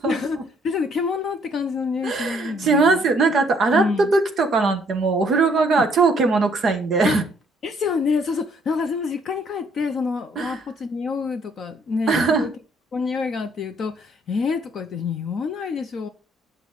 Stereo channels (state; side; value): normal; both; correlation 0.65